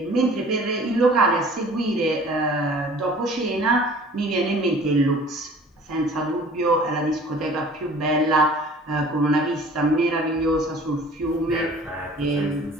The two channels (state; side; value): normal; both; correlation 0.48